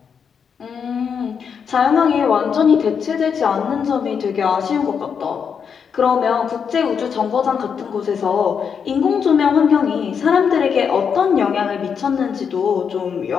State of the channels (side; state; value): right; quieter; 6.8 dB